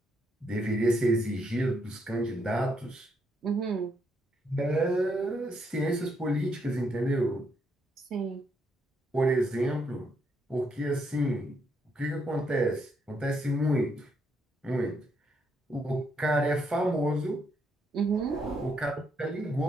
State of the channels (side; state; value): both; normal; correlation 0.76